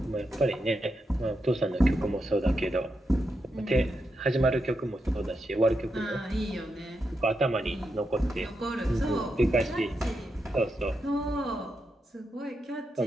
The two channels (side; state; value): both; normal; correlation 0.85